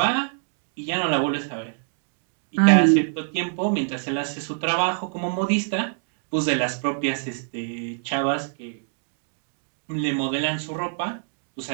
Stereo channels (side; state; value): left; silent; digital silence